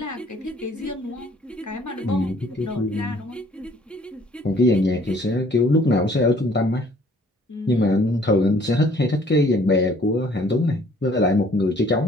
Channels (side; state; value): both; normal; correlation 0.58